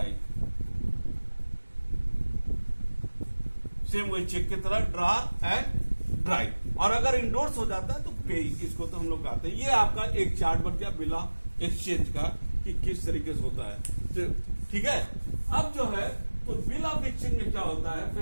सेम वही चेक की तरह ड्रॉर एंड ड्राई। और अगर इंडोर्स हो जाता है तो पे, इसको तो हम लोग कहते हैं। ये आपका एक चार्ट बन गया बिल ऑफ एक्सचेंज का, कि किस तरीके से होता है, ठीक है। अब जो है तो बिल ऑफ एक्सचेंज में क्या होता है,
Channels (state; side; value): inverted; both; correlation -1.00